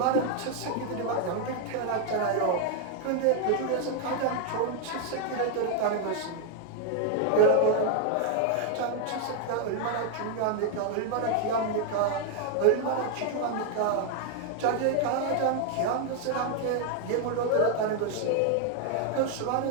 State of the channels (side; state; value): both; different; correlation 0.00